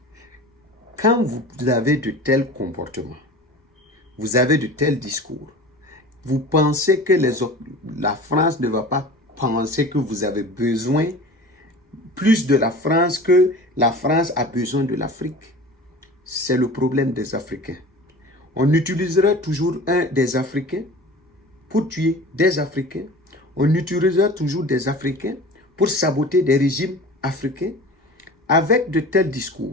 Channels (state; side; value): normal; both; correlation 0.38